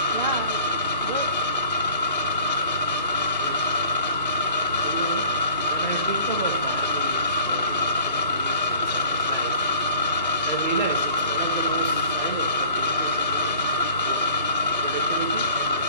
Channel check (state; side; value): inverted; both; correlation -0.47